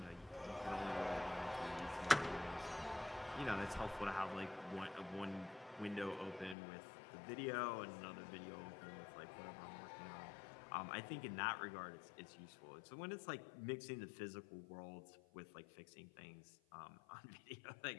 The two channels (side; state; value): right; drops out; at 6.6 s